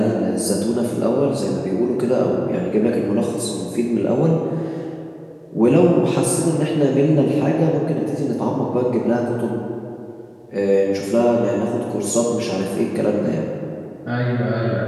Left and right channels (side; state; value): both; identical; correlation 1.00